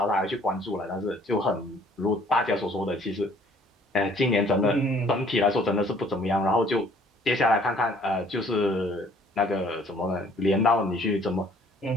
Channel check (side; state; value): both; normal; correlation 0.58